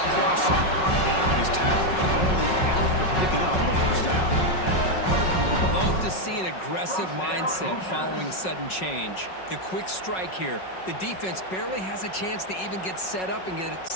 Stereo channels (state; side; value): late; right; 5.4 ms